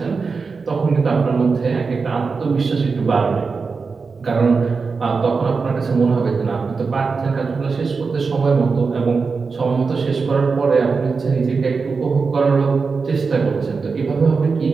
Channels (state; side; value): quieter; left; 4.8 dB